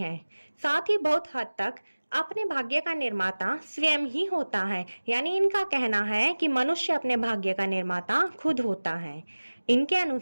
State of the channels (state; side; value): inverted; both; correlation -1.00